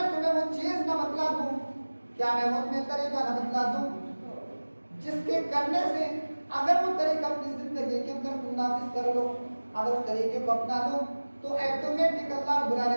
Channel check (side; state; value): both; inverted; correlation -1.00